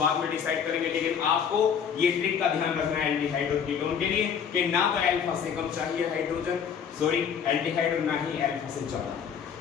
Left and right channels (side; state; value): right; quieter; 7.5 dB